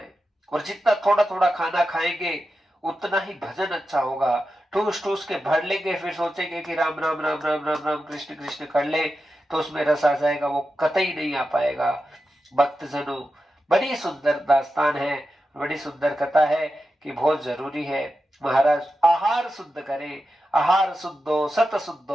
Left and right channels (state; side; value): normal; both; correlation 0.91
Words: और जितना थोड़ा थोड़ा खाना खाएंगे उतना ही भजन अच्छा होगा। ठूस ठूस के भर लेंगे, फिर सोचेंगे कि राम राम राम राम राम राम कृष्ण कृष्ण कर ले तो उसमें रस आ जाएगा, वो कतई नहीं आ पाएगा। भक्तजनों, बड़ी सुंदर दास्तान है, बड़ी सुंदर कथा है कि बहुत जरूरी है महाराज आहार शुद्ध करें। आहार शुद्धो सत